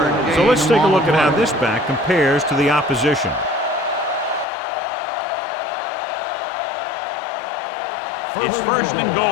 So let's take a look at how this back compares to the opposition. It's first and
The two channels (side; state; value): right; drops out; at 4.5 s